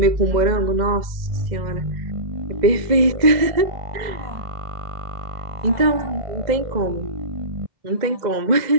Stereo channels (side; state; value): left; late; 2.0 ms